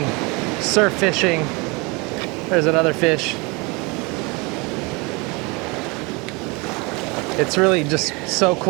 surf fishing. There's another fish. It's really just so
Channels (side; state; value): left; quieter; 27.3 dB